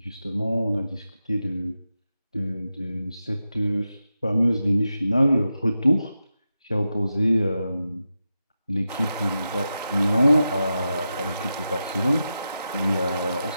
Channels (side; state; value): both; inverted; correlation -0.90